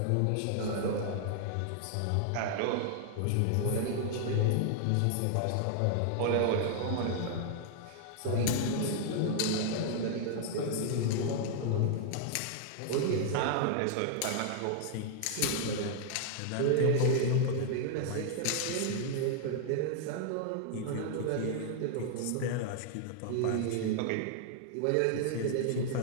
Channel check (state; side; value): different; both; correlation -0.01